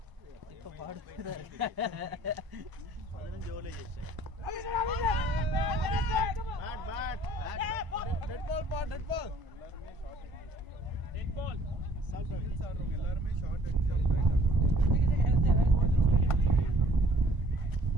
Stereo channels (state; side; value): late; left; 1.0 ms